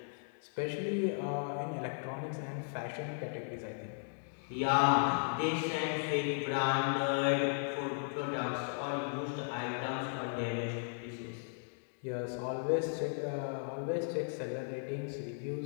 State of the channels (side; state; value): right; silent; digital silence